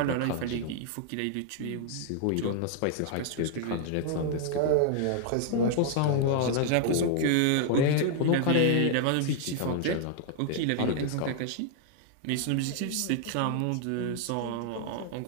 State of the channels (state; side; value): different; both; correlation 0.00